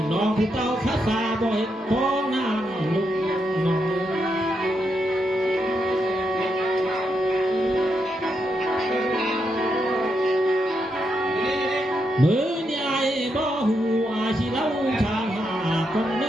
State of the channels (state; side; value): normal; both; correlation 0.82